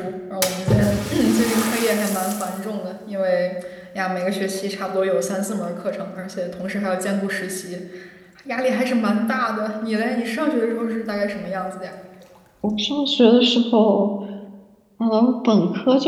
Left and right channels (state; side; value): identical; both; correlation 1.00